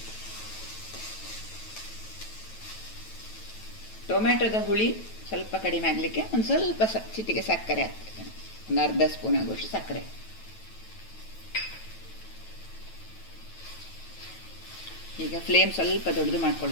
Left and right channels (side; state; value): right; late; 9.2 ms